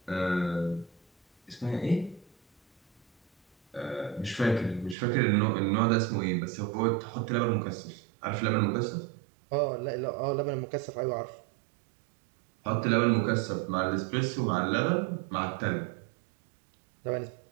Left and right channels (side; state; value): left; drops out; at 5.0 s